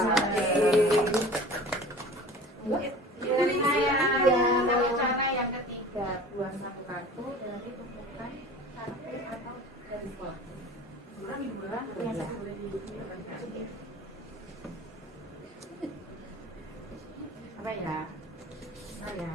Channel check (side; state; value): both; normal; correlation 0.41